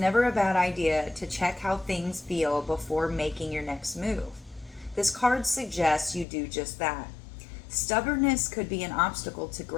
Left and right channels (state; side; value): drops out; right; at 6.2 s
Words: a bad idea to check how things feel before making your next move. This card suggests you do just that. Stubbornness could be an obstacle to